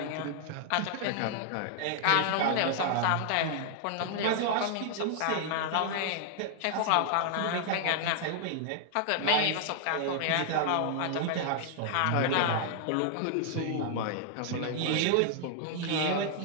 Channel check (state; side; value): different; both; correlation -0.01